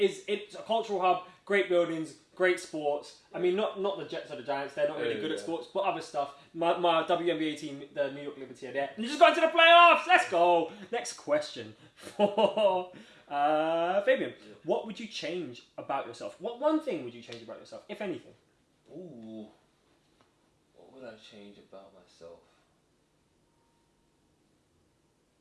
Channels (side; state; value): both; identical; correlation 1.00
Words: a cultural hub, great buildings, great sports. I mean, not the Jets or the Giants. They're not really good at sports, but other stuff. My WNBA team, the New York Liberty, are there. And you just got into the playoffs. Let's go. Next question for Fabian, what would you change about yourself? What one thing would you change about yourself, if anything? Ooh, what would I change about myself?